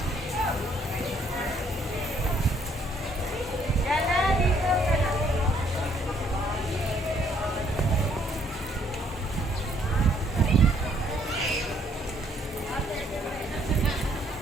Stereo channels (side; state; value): both; normal; correlation 0.66